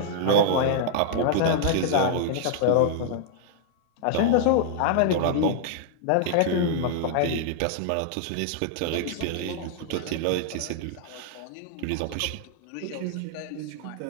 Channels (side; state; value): both; different; correlation -0.01